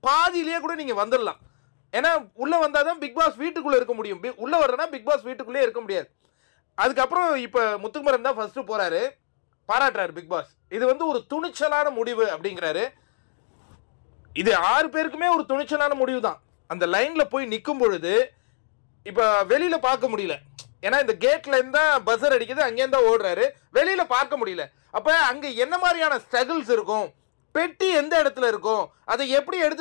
பாதியிலேயே கூட நீங்க வந்துடலாம். ஏன்னா உள்ள வந்தாதான் பிக் பாஸ் வீட்டுக்குள்ள இருக்க முடியும். உள்ள வர்றனா பிக் பாஸ் வீட்டுக்குள்ளே இருக்க முடியாது. அதுக்கப்புறம் இப்ப முத்துக்குமரன் தான் ஃபர்ஸ்ட் போறாரு, பாராட்டுறாரு பிக் பாஸ். இது வந்து ஒரு துணிச்சலான முடிவு அப்படிங்கிறாரு. இது 6 பேருக்குமே ஒரு துணிச்சலான முடிவு தான். அந்த லைன்ல போய் நிற்கும் பொழுது இப்ப வெளியில பார்க்க முடியல. ஏன்னா இந்த கேட்ல இருந்தா பஸர் அடிக்குது, அங்கே இருந்தா ஓடுறாரு, வெளியில பார்க்க முடியல. அப்ப அங்க என்ன மாதிரியான ஸ்ட்ரகிள்ஸ் இருக்கும், பெட்டி எந்த இடத்துல இருக்கும், அதை எப்படி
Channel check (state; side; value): silent; right; digital silence